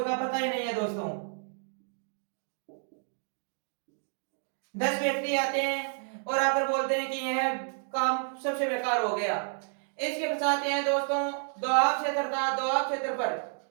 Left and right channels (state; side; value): silent; left; digital silence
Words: का पता ही नहीं है दोस्तों। 10 व्यक्ति आते हैं और आकर बोलते हैं कि यह काम सबसे बेकार हो गया। इसके पश्चात यह दोस्तों दोआब क्षेत्र था, दोआब क्षेत्र पर